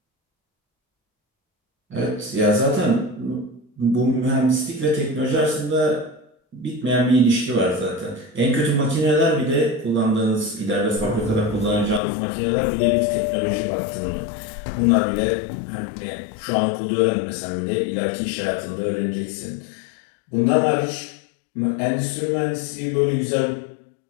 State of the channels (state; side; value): drops out; right; at 12.0 s